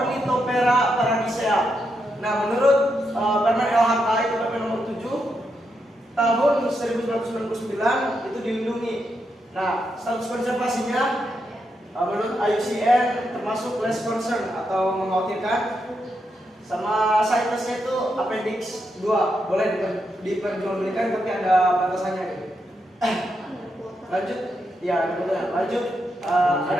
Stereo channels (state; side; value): normal; both; correlation 0.83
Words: paradisea. Nah, menurut permen LHK itu permen nomor 7 tahun 1999 itu dilindungi. Nah, status konservasinya menurut IUCN termasuk less concern atau mengkhawatirkan, sama CITES-nya itu appendix 2 boleh diperjualbelikan tapi ada batasannya gitu. Lanjut ya, lanjut